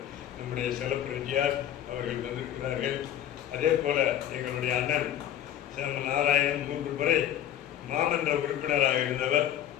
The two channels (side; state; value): right; quieter; 11.0 dB